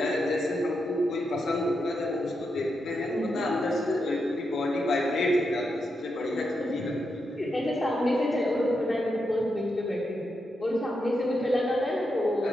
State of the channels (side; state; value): both; normal; correlation 0.85